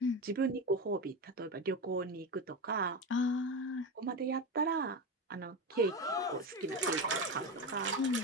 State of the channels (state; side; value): normal; both; correlation 0.19